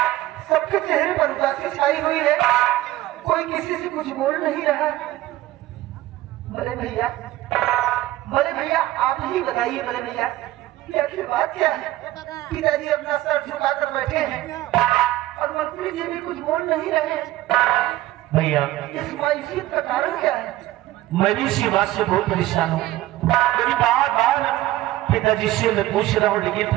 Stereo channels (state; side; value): quieter; left; 15.9 dB